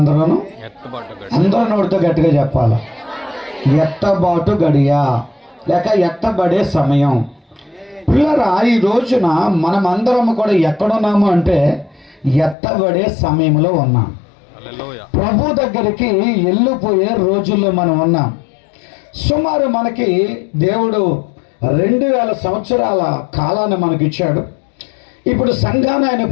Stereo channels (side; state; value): right; drops out; at 12.6 s